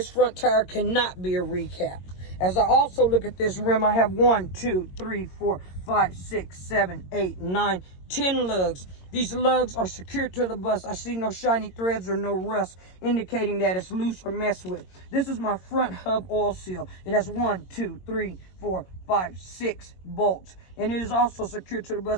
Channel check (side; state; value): right; late; 22 ms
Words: front tire cannot be a recap. As I also look at this rim, I have 1, 2, 3, 4, 5, 6, 7, 8, 9, 10 lugs. These lugs are secured to the bus. I see no shiny threads or no rust, indicating that it's loose or messed with. This is my front hub oil seal. It has 1, 2, 3, 4, 5, 6 bolts, and it is also secured to the